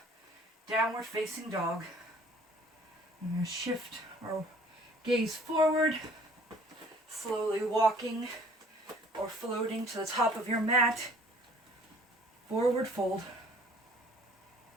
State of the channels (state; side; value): normal; both; correlation 0.54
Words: downward facing dog. I'm going to shift our gaze forward, slowly walking or floating to the top of your mat. Forward fold.